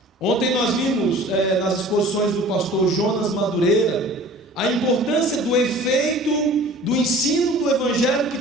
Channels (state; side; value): normal; both; correlation 0.45